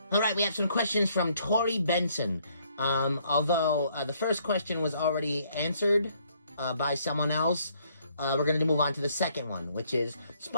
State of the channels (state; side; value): inverted; both; correlation -0.67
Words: All right, we have some questions from Tori Benson. Although the first question was already answered by someone else, we're going to move on to the second one, which is